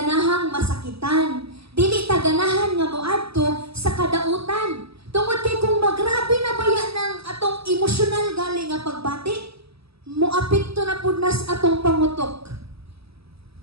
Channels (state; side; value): late; left; 0.77 ms